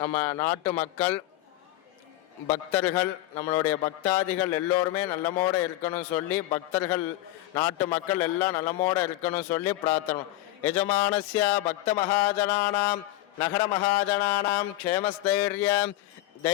நம்ம நாட்டு மக்கள் பக்தர்கள் நம்மளுடைய பக்தாதிகள் எல்லோருமே நல்லமோடு இருக்கணும் சொல்லி பக்தர்கள் நாட்டு மக்கள் எல்லாம் நல்லமோடு இருக்கணும் சொல்லி பிரார்த்தனை. யஜமானஸ்ய பக்த மகாஜனானாம் நகர மகாஜனானாம் க்ஷேமஸ்தைரிய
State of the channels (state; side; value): quieter; right; 16.0 dB